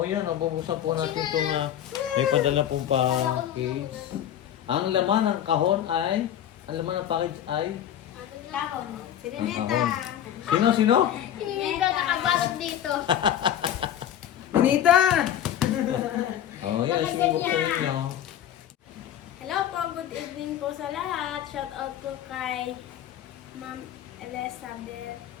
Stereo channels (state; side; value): quieter; right; 10.6 dB